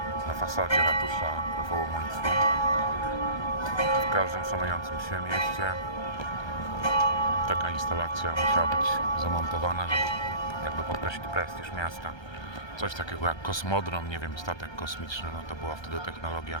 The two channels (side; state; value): right; late; 1.3 ms